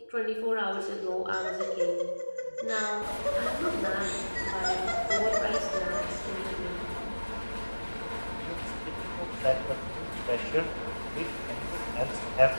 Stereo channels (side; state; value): both; inverted; correlation -1.00